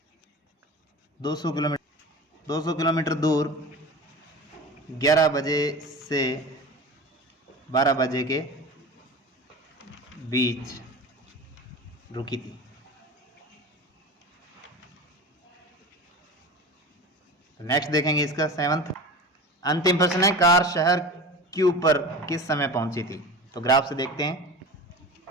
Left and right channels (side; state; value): both; normal; correlation 0.33